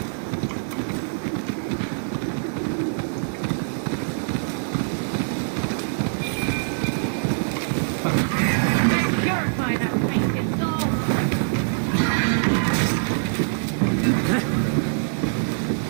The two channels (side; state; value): left; silent; digital silence